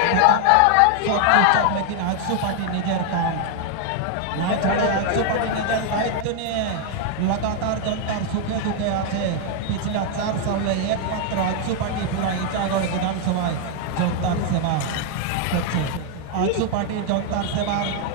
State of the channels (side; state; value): both; different; correlation 0.00